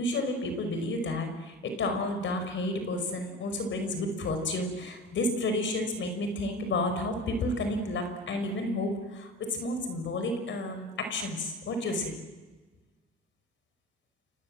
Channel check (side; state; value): both; normal; correlation 0.33